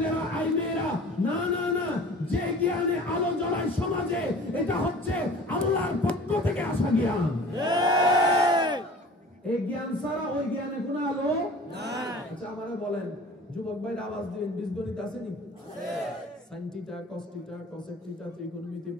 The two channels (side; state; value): both; normal; correlation 0.44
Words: আই মেয়েরা, না না না, যে জ্ঞানে আলো জ্বলায় সমাজে, এটা হচ্ছে আল্লাহর পক্ষ থেকে আসা জ্ঞান। এই জ্ঞান ছাড়া ওই জ্ঞানে কোনো আলো নাই। আচ্ছা আমারে বলেন, যুবক ভাইরা আওয়াজ দিবেন, বীজগণিত আছে নি? Sine theta, cos theta, cosec theta, ত্রিকোণমিতি,